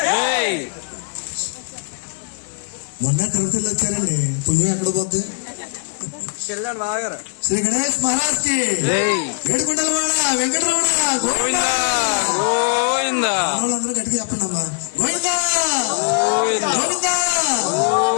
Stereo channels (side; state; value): right; silent; digital silence